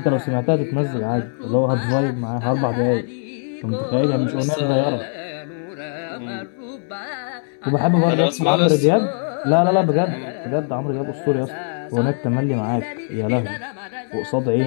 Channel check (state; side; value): silent; right; digital silence